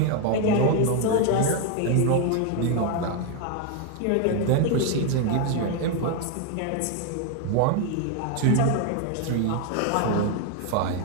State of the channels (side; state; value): both; different; correlation 0.01